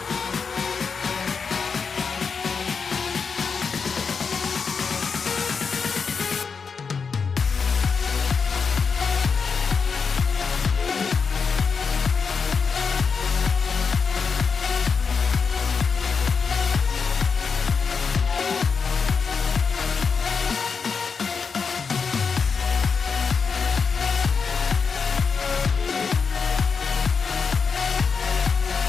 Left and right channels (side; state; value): right; quieter; 5.5 dB